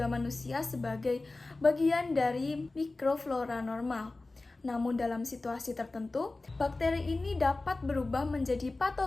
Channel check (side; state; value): right; quieter; 3.2 dB